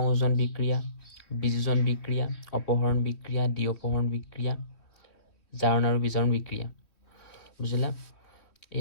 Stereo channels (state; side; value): late; right; 3.3 ms